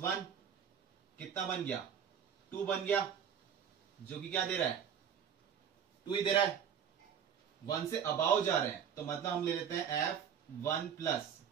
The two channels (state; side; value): quieter; left; 8.0 dB